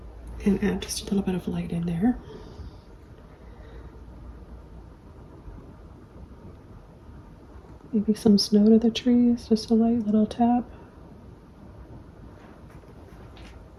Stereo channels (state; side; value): identical; both; correlation 1.00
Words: And add just a little bit of light in there. Maybe some snow to the trees, just a light little tap.